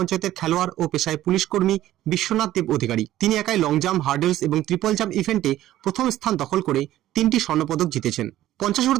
খেলোয়াড় ও পেশায় পুলিশ কর্মী বিশ্বনাথ দেব অধিকারী। তিনি একাই লং জাম্প, হার্ডেলস এবং ট্রিপল জাম্প ইভেন্টে প্রথম স্থান দখল করে 3টি স্বর্ণপদক জিতেছেন।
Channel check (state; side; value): quieter; left; 14.0 dB